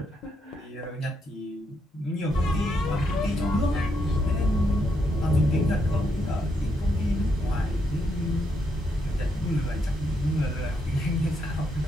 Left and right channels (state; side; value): normal; both; correlation 0.78